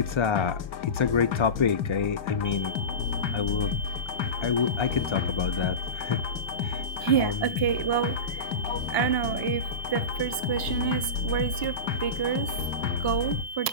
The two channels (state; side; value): late; right; 1.0 ms